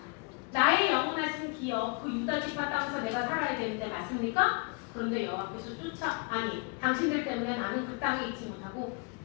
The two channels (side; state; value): right; quieter; 33.9 dB